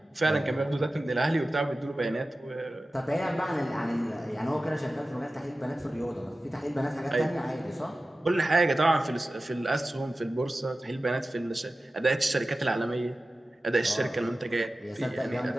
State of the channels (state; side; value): normal; both; correlation 0.95